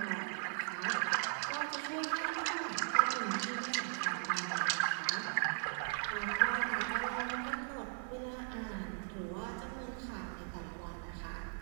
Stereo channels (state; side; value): silent; left; digital silence